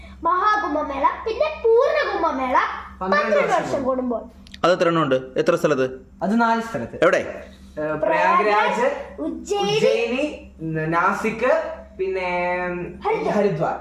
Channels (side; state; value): both; identical; correlation 1.00